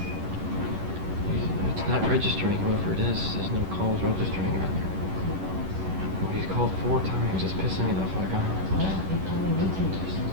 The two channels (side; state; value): left; late; 11 ms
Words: It's not registering, whoever it is. There's no calls registering on there. He's called 4 times. It's pissing me the fuck off.